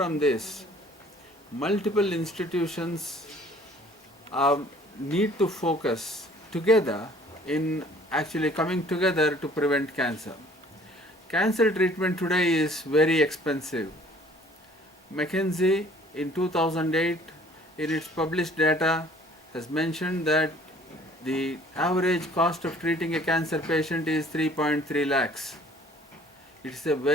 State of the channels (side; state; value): both; normal; correlation 0.54